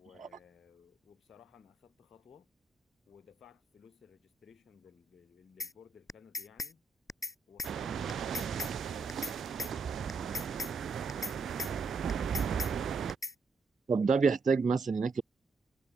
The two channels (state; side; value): quieter; left; 4.7 dB